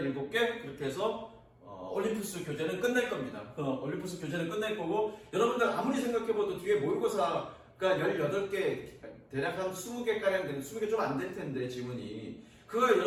7개, 그렇게 해서 올림푸스 교재는 끝낼 겁니다. 올림푸스 교재는 끝낼 거고, 여러분들 아무리 생각해봐도 뒤에 모의고사가 18개, 대략 한 20개가량 되는, 20개 좀 안 될 텐데, 지문이. 그거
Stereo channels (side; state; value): both; identical; correlation 1.00